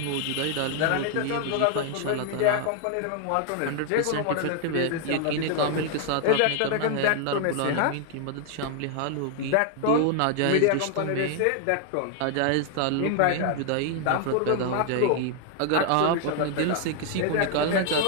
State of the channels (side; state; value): both; different; correlation 0.00